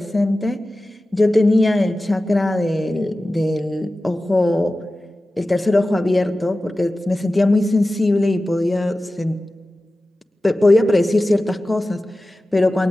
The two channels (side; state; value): both; normal; correlation 0.95